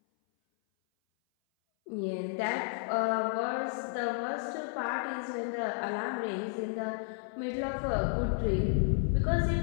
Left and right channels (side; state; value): right; silent; 56 dB below the other